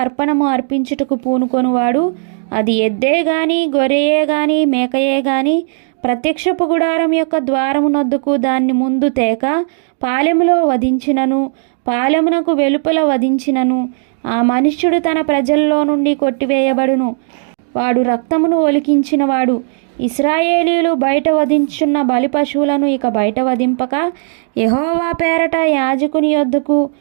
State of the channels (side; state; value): left; silent; digital silence